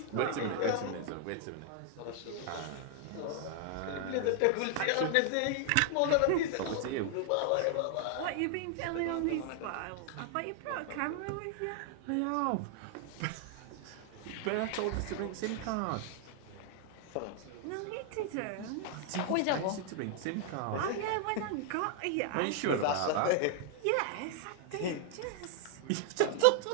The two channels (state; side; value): different; both; correlation 0.00